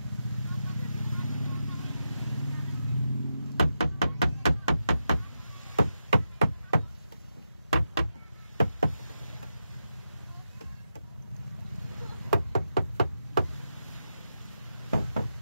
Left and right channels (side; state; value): both; inverted; correlation -0.86